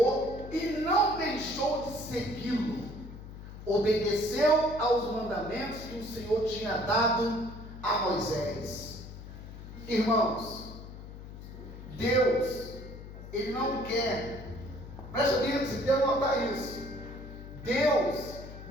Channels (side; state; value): left; noise; hum, 13 dB below the sound